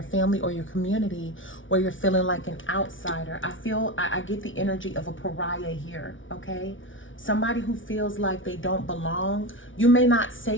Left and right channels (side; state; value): right; late; 0.56 ms